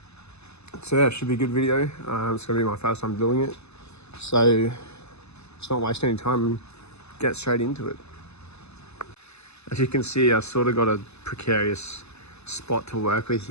yeah, it should be a good video. It's gonna be my first time doing it, so let's not waste any time and get straight into it. As you can see, I sort of got a precarious spot to work with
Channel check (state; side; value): late; right; 0.80 ms